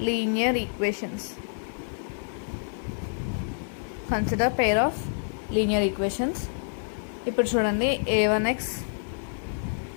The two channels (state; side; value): silent; right; 60 dB below the other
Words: linear equations. Consider pair of linear equations. ఇప్పుడు చూడండి, a1x